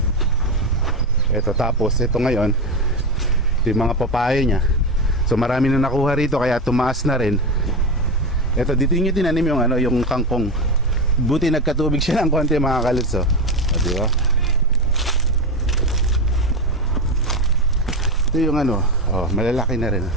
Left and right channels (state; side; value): normal; both; correlation 0.16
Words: Ito, tapos ito ngayon ito yung mga papaya niya. So marami na nakuha rito kaya tumaas na rin. Ito, dito niya tinanim yung yung kangkong. Buti nagkatubig siya ng konti mga kaluts. Oh. Di ba? Ito yung malalaki na rin.